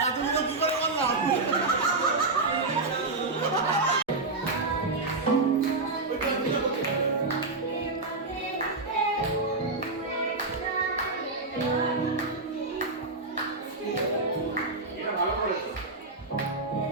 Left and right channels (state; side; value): quieter; left; 3.4 dB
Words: এতগুলো কি করে বললাম?